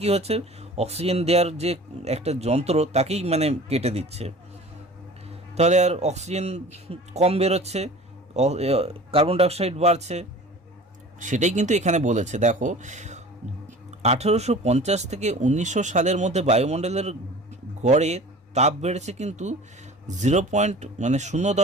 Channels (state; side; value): normal; both; correlation 0.42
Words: কি হচ্ছে? অক্সিজেন দেওয়ার যে একটা যন্ত্র তাকেই কেটে দিচ্ছে। তাহলে আর অক্সিজেন কম বেরোচ্ছে, কার্বন ডাইঅক্সাইড বাড়ছে। সেটাই কিন্তু এখানে বলেছে। দেখো, 1850 থেকে 1900 সালের মধ্যে বায়ুমণ্ডলের গড়ে তাপ বেড়েছে কিন্তু